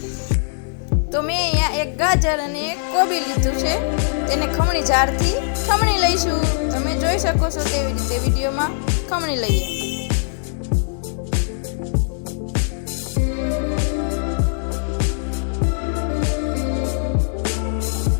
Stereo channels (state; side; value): silent; right; digital silence